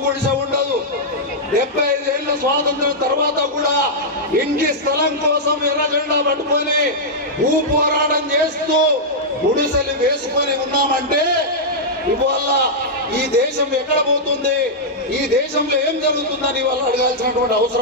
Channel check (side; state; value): both; normal; correlation -0.08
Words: గుడిసె ఉండదు. 75 ఏళ్ల స్వాతంత్రం తర్వాత కూడా ఇంటి స్థలం కోసం ఎర్ర జెండా పట్టుకొని భూ పోరాటం చేస్తూ గుడిసెలు వేసుకొని ఉన్నామంటే ఇవాళ ఈ దేశం ఎక్కడ పోతుంది, ఈ దేశంలో ఏం జరుగుతుందని వాళ్ళు అడగాల్సినటువంటి